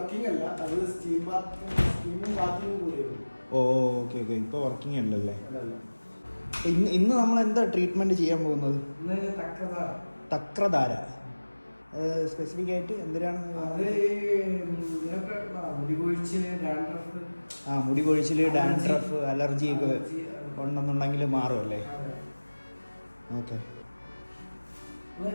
അല്ല, അത് സ്റ്റീമും ബാത്തിങ്ങും കൂടിയാണ്. ഓ, ഓക്കെ ഓക്കെ, ഇപ്പോൾ വർക്കിംഗ് അല്ലല്ലേ? ഇന്ന് നമ്മൾ എന്താ ട്രീറ്റ്മെന്റ് ചെയ്യാൻ പോകുന്നത്? തക്രധാര സ്പെസിഫിക് ആയിട്ട് എന്തിനാണ്? മുടി കൊഴിച്ചില്, ഡാൻഡ്രഫ്, അലർജി ഒക്കെ ഉണ്ടെന്നുണ്ടെങ്കിൽ മാറുമല്ലേ? Okay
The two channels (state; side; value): inverted; both; correlation -1.00